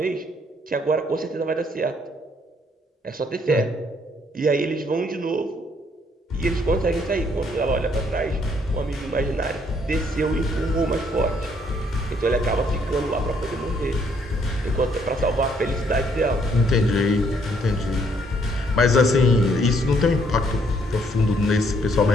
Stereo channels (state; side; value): normal; both; correlation 0.68